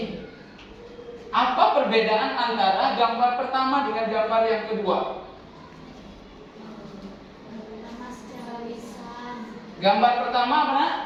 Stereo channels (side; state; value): both; identical; correlation 1.00